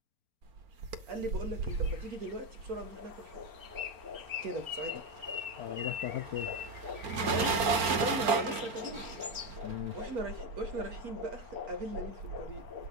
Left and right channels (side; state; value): left; late; 4.4 ms